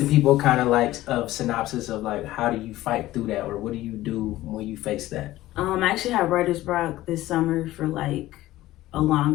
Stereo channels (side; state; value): right; quieter; 16.0 dB